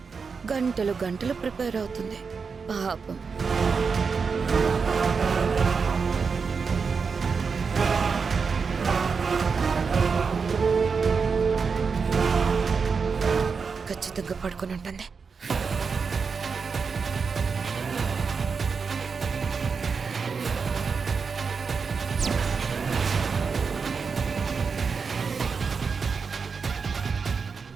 గంటలు గంటలు ప్రిపేర్ అవుతుంది పాపం. ఖచ్చితంగా పడుకొని ఉంటుంది.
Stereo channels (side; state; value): left; quieter; 5.3 dB